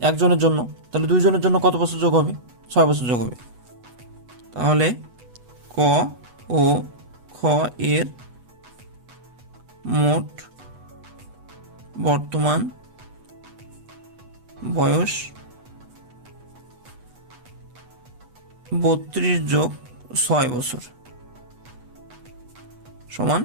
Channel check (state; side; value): late; left; 8.2 ms